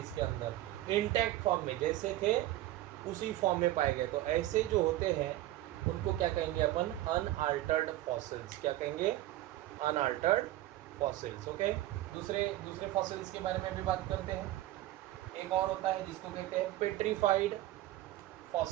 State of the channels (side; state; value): left; quieter; 15.4 dB